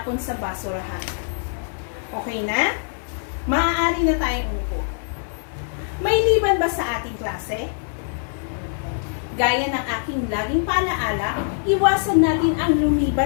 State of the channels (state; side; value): silent; right; digital silence